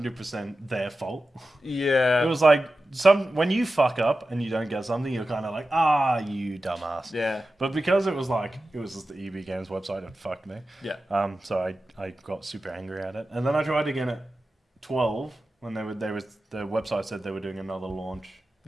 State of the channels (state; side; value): normal; both; correlation 0.93